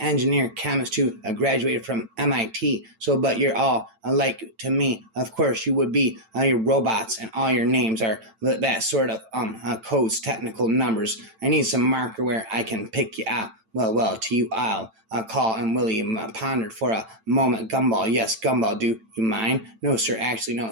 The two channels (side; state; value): left; late; 9.0 ms